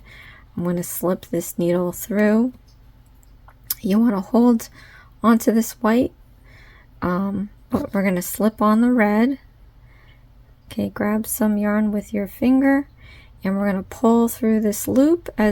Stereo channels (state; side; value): identical; both; correlation 1.00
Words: I'm going to slip this needle through. You want to hold onto this white, but we're going to slip on the red. Okay, grab some yarn with your finger, and we're going to pull through this loop